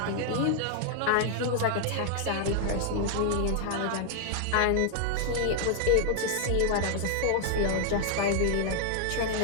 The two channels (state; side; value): different; both; correlation 0.00